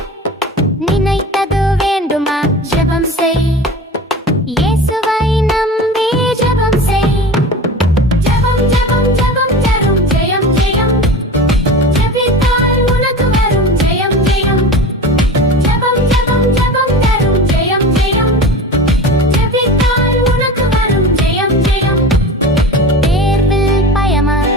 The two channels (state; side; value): normal; both; correlation 0.32